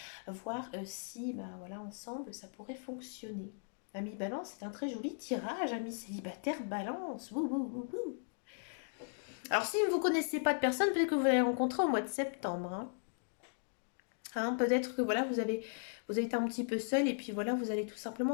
voir si, voilà, ensemble, ça pourrait fonctionner. Ami balance, c'est un très joli tirage, ami célibataire balance. Wouh, wouh, wouh, wouh. Alors, si vous ne connaissez pas de personne, peut-être que vous allez rencontrer au mois de septembre. Peut-être que voilà, vous avez été un petit peu seul, et puis voilà, vous allez tout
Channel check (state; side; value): silent; right; digital silence